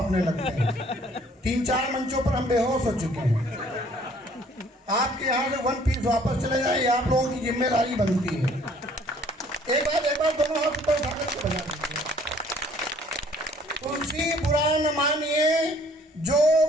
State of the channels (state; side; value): normal; both; correlation 0.58